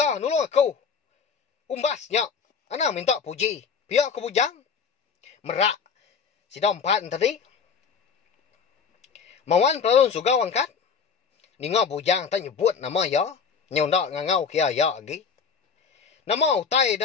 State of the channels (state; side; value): quieter; right; 6.1 dB